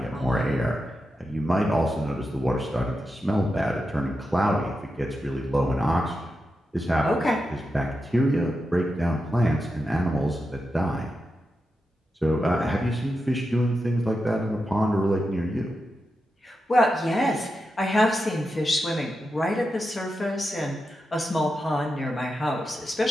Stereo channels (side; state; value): both; normal; correlation 0.89